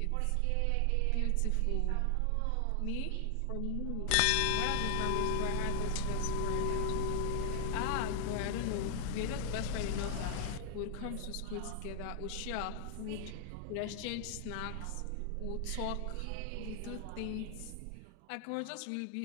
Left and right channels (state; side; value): different; both; correlation 0.00